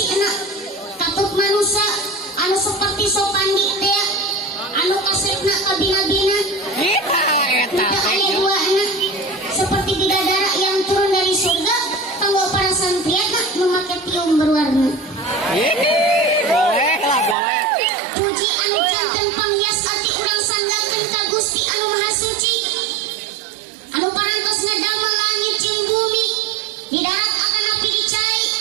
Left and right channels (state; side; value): drops out; left; at 17.4 s